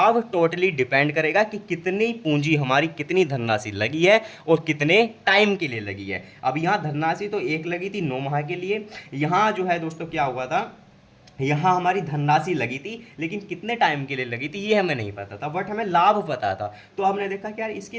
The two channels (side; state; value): both; identical; correlation 1.00